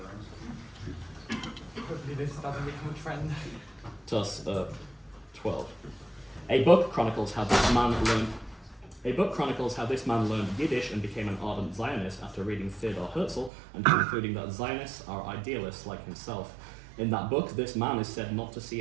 Hopefully this doesn't become a trend. Toss 12. A book chronicles how this man learned Yiddish and became an ardent Zionist after reading Theodor Herzl and concluding that Zionists are idealists like himself. In that book, this man is said not to see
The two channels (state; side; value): drops out; left; at 13.5 s